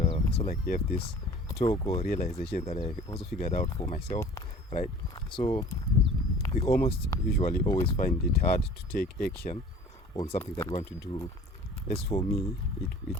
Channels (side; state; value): both; normal; correlation 0.47